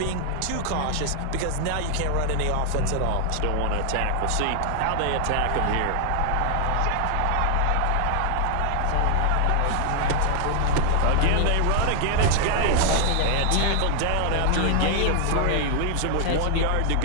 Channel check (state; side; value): different; both; correlation 0.00